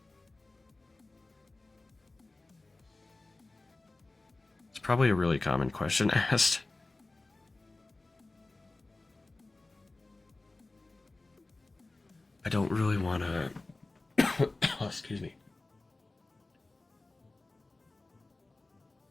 It's probably a really common question asked. I don't really want to. Oh, excuse me.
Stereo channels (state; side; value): quieter; right; 3.1 dB